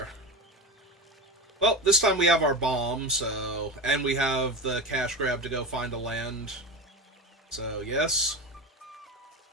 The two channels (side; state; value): both; normal; correlation 0.23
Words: Well, this time we have our bomb, so... And we have the cash grab to go find a land. So, yes.